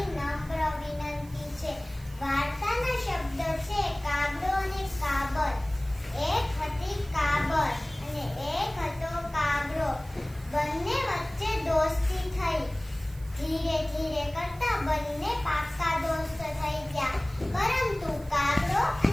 નમ્ર વિનંતી છે। વાર્તાના શબ્દ છે કાગડો અને કાબર। એક હતી કાબર અને એક હતો કાગડો। બંને વચ્ચે દોસ્તી થઈ। ધીરે ધીરે કરતા બંને પાક્કા દોસ્ત થઈ ગયા। પરંતુ કાગડો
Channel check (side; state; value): right; noise; hiss, 24 dB below the sound